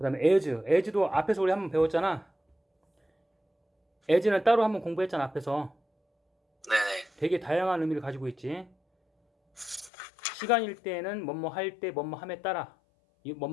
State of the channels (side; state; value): right; drops out; at 9.9 s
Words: 다음에 as도 앞에서 우리 한번 배웠잖아. as는 따로 한번 공부했잖아 앞에서. 네네. 되게 다양한 의미를 가지고 있지. 시간일 때는 뭐뭐 할 때, 뭐뭐 함에 따라,